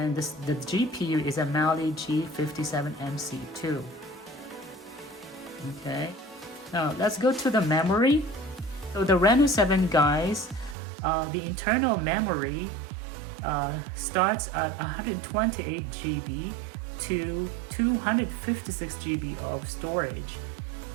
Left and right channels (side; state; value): left; drops out; at 10.8 s